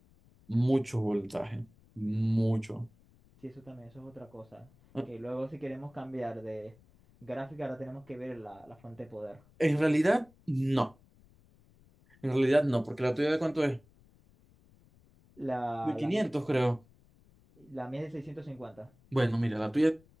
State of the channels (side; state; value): left; noise; rumble, 29 dB below the sound